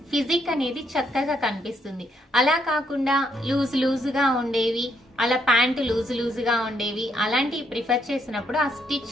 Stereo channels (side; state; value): both; normal; correlation 0.74